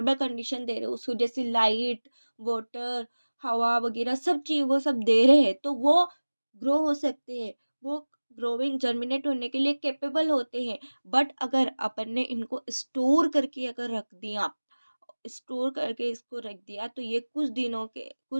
कंडीशन दे रहे हो, उसको जैसे लाइट, वाटर, हवा वगैरह सब चीज़ वो सब दे रहे हैं, तो वो ग्रो हो सकते हैं, वो ग्रोविंग जर्मिनेट होने के लिए कैपेबल होते हैं। बट अगर अपन ने इनको स्टोर करके इसको रख दिया, तो ये कुछ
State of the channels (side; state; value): both; inverted; correlation -1.00